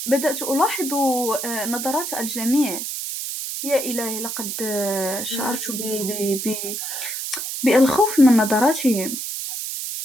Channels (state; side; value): noise; right; hiss, 5 dB below the sound